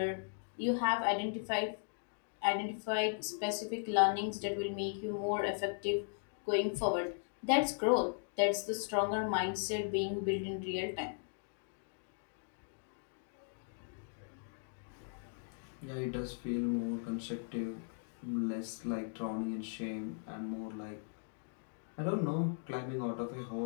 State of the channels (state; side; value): silent; right; digital silence